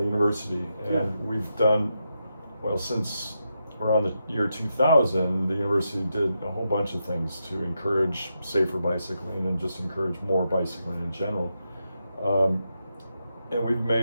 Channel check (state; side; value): inverted; both; correlation -0.85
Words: university, and we've done, since around the year 2000, the university did a whole bunch of things to encourage safer bicycling and just encourage more bicycling in general. And we've